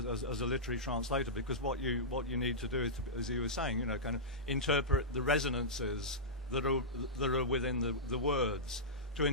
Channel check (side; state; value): both; normal; correlation -0.14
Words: a literary translator, because what you need to do is, as you were saying, you know, kind of interpret the resonances that are within the words. to